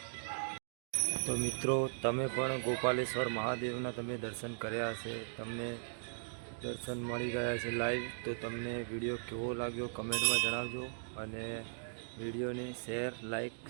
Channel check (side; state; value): left; silent; digital silence